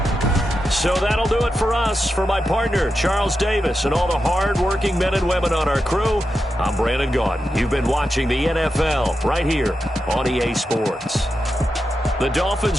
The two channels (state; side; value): normal; both; correlation 0.89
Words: So that'll do it for us. For my partner, Charles Davis, and all the hard-working men and women on our crew, I'm Brandon Gaudin. You've been watching the NFL right here on EA Sports. The